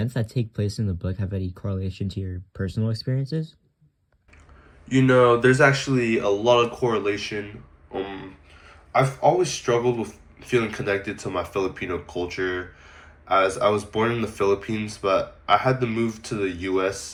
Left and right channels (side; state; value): both; identical; correlation 1.00